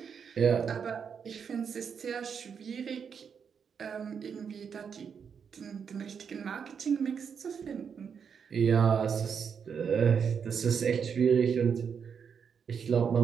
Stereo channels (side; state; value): left; quieter; 6.8 dB